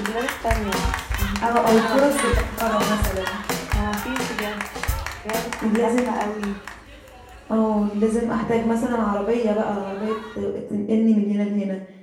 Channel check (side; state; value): both; identical; correlation 1.00